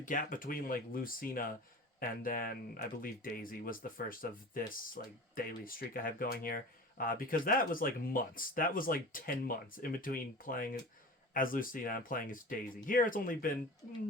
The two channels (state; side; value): normal; both; correlation 0.36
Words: between, like, Lucina and then, I believe, Daisy was the first of this, like, daily streak I have going here. Because that was, like, months. That was, like, 10 months in between playing as Lucina and playing as Daisy. Here, it's only been